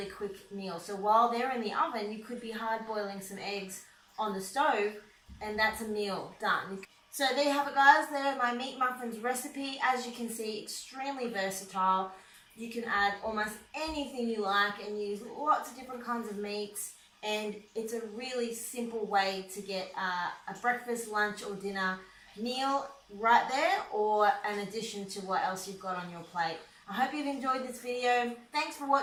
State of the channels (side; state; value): both; identical; correlation 1.00